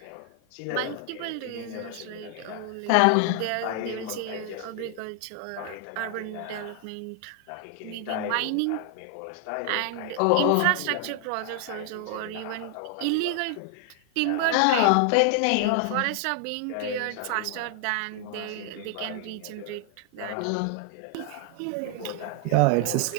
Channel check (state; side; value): different; both; correlation 0.00